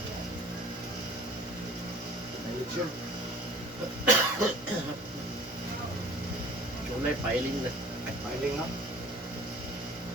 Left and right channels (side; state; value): both; normal; correlation 0.47